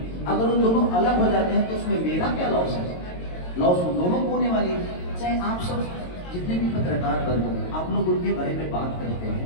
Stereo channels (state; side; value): late; right; 22 ms